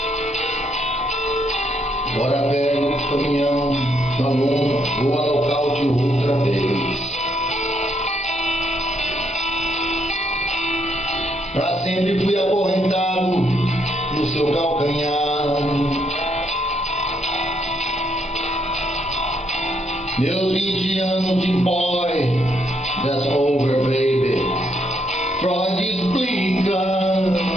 Bora velho, caminhão, da lona, vou a nocaute outra vez. Pra sempre fui acorrentado no seu calcanhar. Meus 20 anos de boy, that's over baby. Freud explica,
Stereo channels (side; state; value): right; noise; hum, 29 dB below the sound